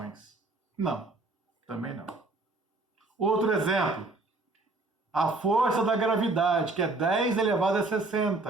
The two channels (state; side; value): quieter; left; 3.2 dB